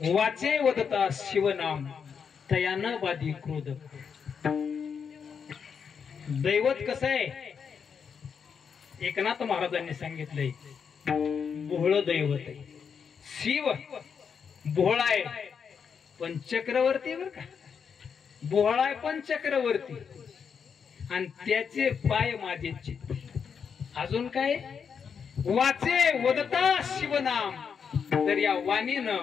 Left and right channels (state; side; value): quieter; right; 6.6 dB